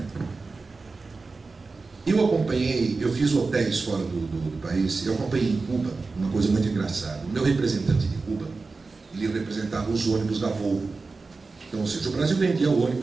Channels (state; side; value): quieter; left; 4.0 dB